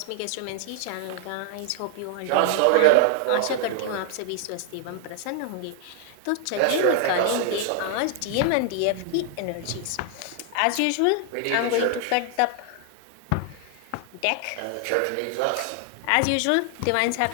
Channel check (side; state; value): both; different; correlation -0.01